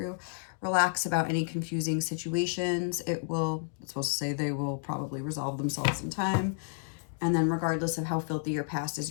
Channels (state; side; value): silent; right; 57 dB below the other